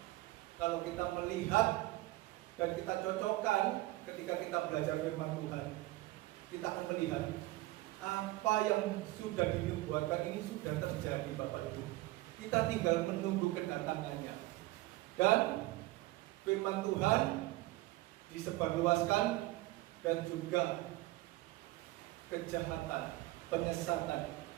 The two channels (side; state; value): left; quieter; 18.8 dB